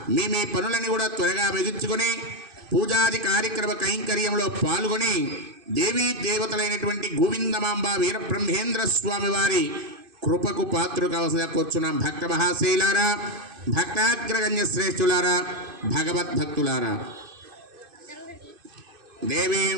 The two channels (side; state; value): left; late; 2.5 ms